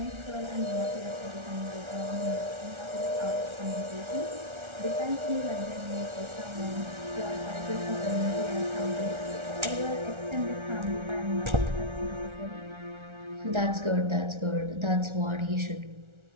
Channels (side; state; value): left; late; 1.4 ms